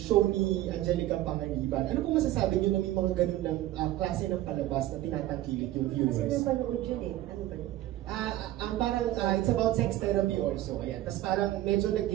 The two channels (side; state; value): left; quieter; 14.7 dB